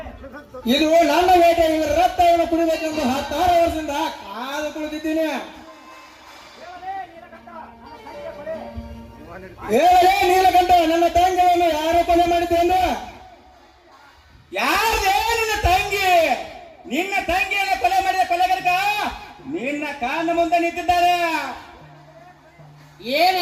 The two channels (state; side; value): identical; both; correlation 1.00